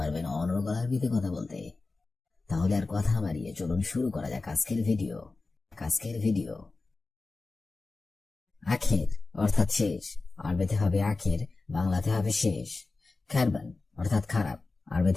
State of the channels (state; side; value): quieter; right; 3.7 dB